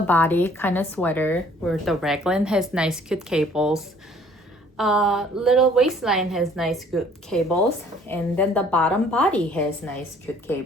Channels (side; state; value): both; normal; correlation 0.57